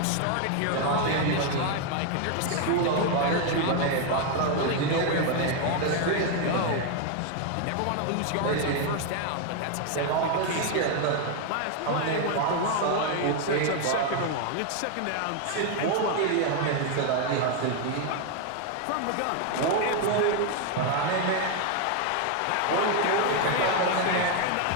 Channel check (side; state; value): both; different; correlation 0.01